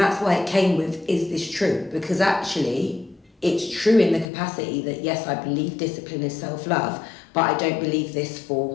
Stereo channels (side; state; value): right; drops out; at 4.2 s